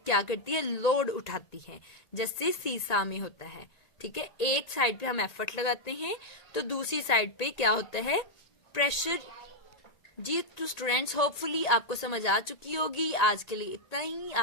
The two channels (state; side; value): late; right; 1.9 ms